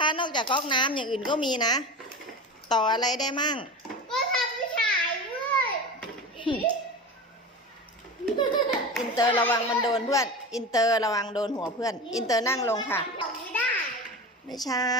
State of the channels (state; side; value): normal; both; correlation 0.28